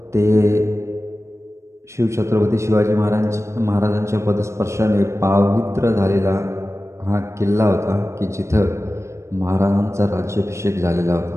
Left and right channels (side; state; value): left; late; 0.14 ms